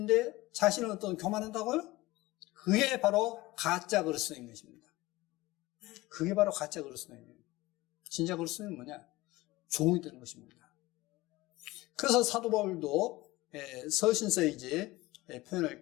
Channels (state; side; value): quieter; right; 19.6 dB